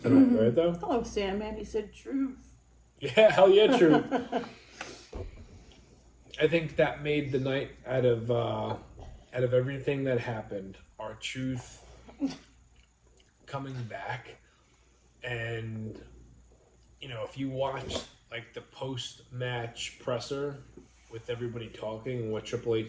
tonight, right? Though. Hello, Sandman. He said truth. Yeah, hell yeah, true. I think that made the night out of everything that happened. Our truth coming back, and if you watch like the post-match presser with everybody talking and what Triple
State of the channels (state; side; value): identical; both; correlation 1.00